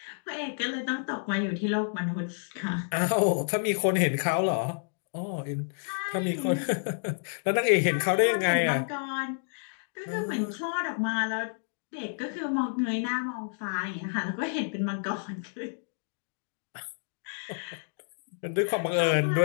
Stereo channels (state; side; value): silent; right; digital silence